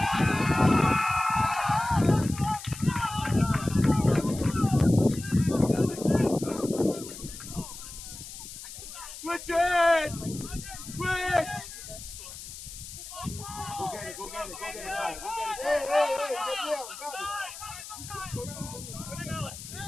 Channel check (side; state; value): left; noise; hiss, 12 dB below the sound